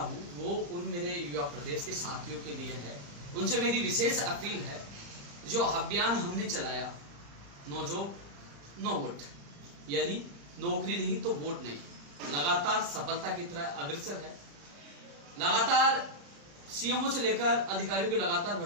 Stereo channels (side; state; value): left; late; 35 ms